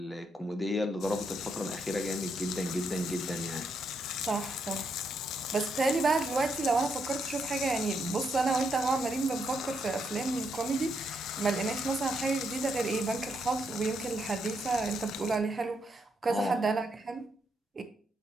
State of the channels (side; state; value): both; normal; correlation 0.78